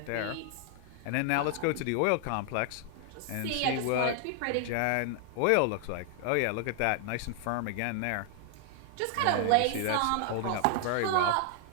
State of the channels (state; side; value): different; both; correlation 0.00